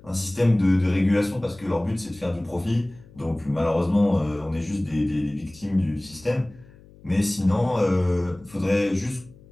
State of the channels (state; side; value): noise; left; hum, 24 dB below the sound